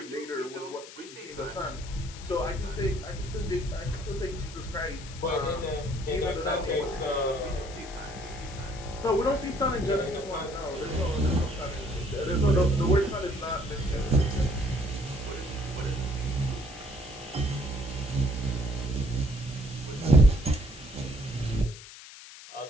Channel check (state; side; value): noise; left; hiss, 16 dB below the sound